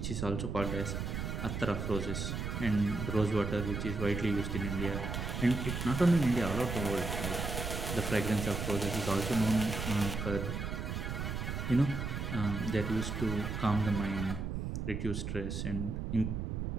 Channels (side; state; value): right; noise; rumble, 3 dB below the sound